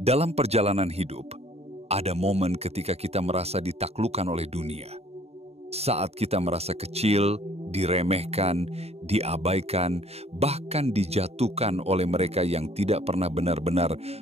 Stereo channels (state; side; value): late; left; 0.30 ms